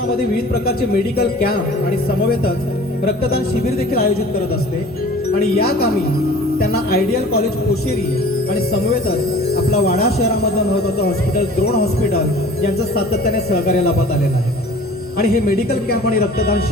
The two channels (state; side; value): normal; both; correlation 0.45